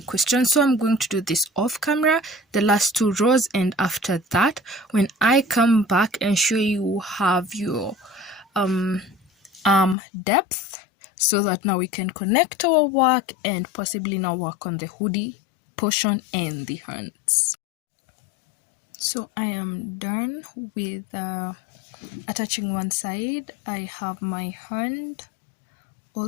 questions. So I'm going to do this off camera, the last 2 rows, and after that, when I come back and show you have your arm depth, so that now we can connect our work and possibly now work on the hoodie portion and the hands. So I am done with attaching one side. I have my hand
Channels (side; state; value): right; drops out; at 10.0 s